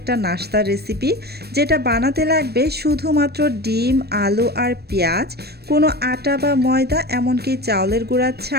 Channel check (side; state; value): left; late; 0.47 ms